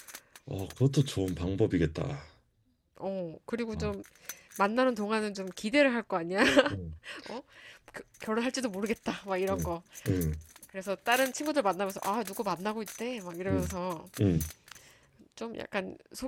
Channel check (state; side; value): identical; both; correlation 1.00